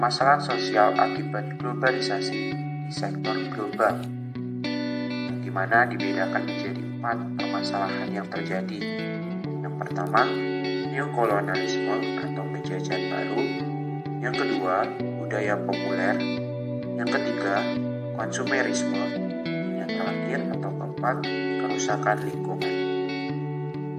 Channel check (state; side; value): identical; both; correlation 1.00